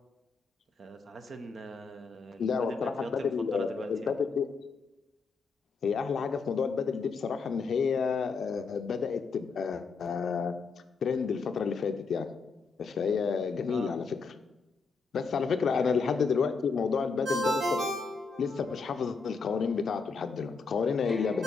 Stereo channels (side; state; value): right; quieter; 4.9 dB